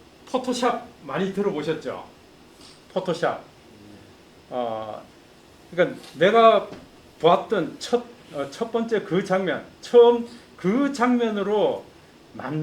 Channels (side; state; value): both; identical; correlation 1.00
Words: 포토샵 많이 들어보셨죠? 포토샵. 그러니까 내가 보았던 첫 번째 그 장면, 처음 그 장면으로